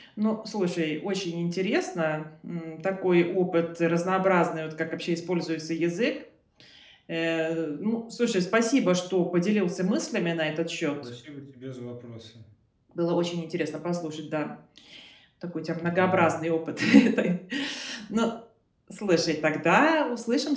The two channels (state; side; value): identical; both; correlation 1.00